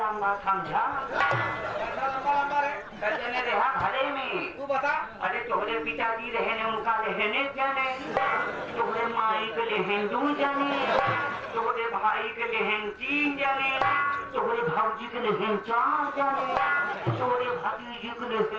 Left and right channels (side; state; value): both; identical; correlation 1.00